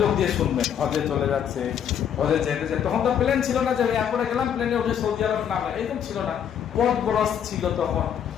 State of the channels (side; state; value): right; quieter; 8.8 dB